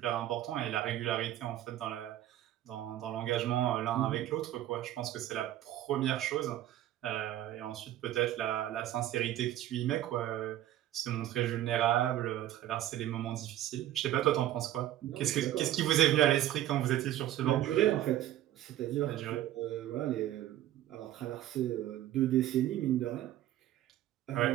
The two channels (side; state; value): left; quieter; 13.1 dB